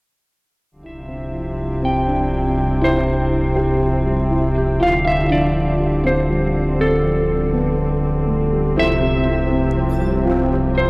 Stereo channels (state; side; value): identical; both; correlation 1.00